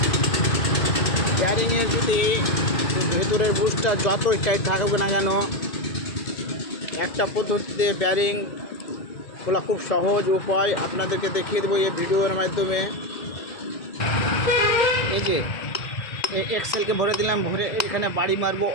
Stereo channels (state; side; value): late; right; 2.0 ms